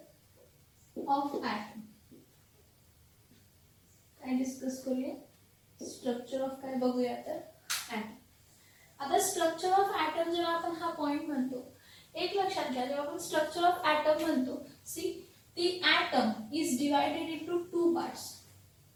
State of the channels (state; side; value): identical; both; correlation 1.00